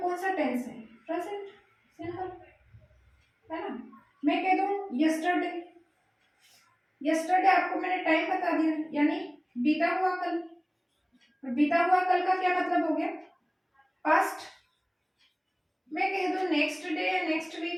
सा टेंस है? प्रेजेंट, सिंपल है ना। मैं कह दूं यस्टरडे, यस्टरडे आपको मैंने टाइम बता दिया, यानी बीता हुआ कल। बीता हुआ कल का क्या मतलब हो गया? पास्ट। मैं कह दूं नेक्स्ट डे या नेक्स्ट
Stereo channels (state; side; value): identical; both; correlation 1.00